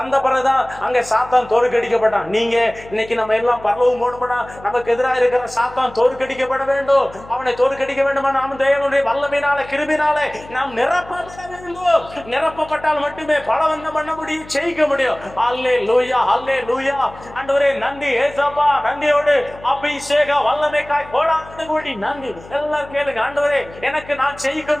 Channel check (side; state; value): left; noise; hum, 19 dB below the sound